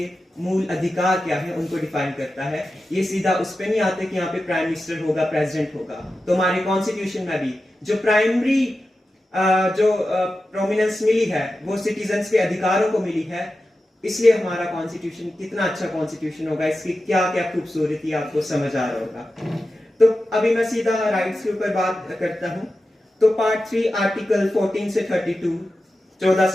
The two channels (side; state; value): both; normal; correlation 0.92